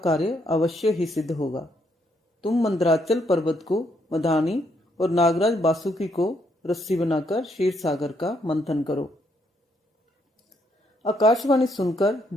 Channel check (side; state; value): both; normal; correlation 0.73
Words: कार्य अवश्य ही सिद्ध होगा। तुम मंदराचल पर्वत को मदानी और नागराज बासुकी को रस्सी बनाकर क्षीर सागर का मंथन करो। आकाशवाणी सुनकर